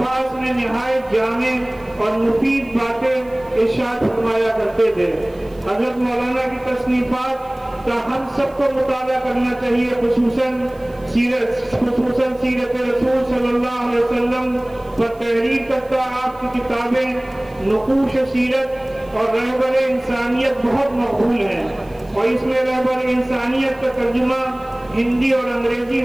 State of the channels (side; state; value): right; noise; hiss, 30 dB below the sound